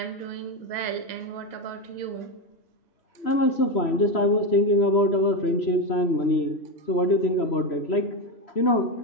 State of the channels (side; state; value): right; late; 3.0 ms